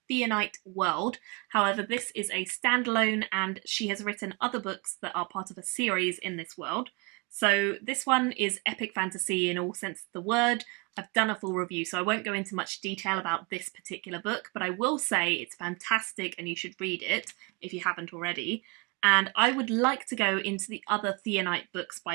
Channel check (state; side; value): quieter; left; 29.2 dB